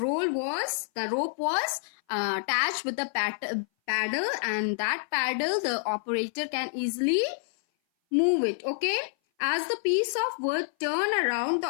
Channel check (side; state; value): right; silent; 57 dB below the other